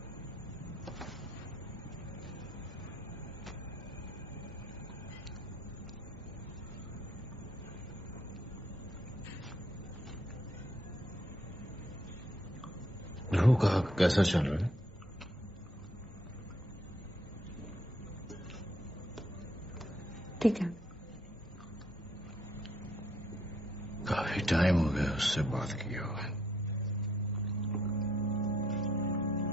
ध्रुव का कैसा चल रहा है? ठीक है. काफी टाइम हो गया उससे बात किया हुआ.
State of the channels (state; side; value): normal; both; correlation 0.71